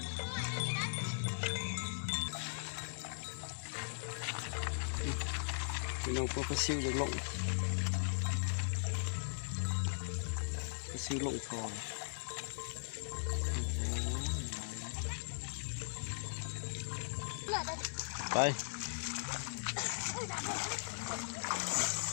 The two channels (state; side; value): silent; right; digital silence